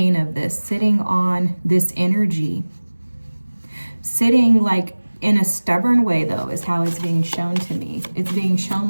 of this, sitting on this energy. Sitting like in a stubborn way, though, is how it's being shown to me. It's being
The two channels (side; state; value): both; inverted; correlation -1.00